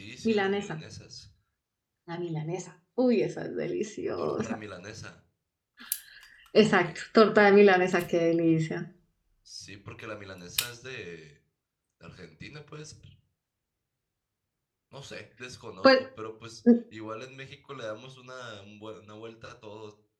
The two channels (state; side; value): identical; both; correlation 1.00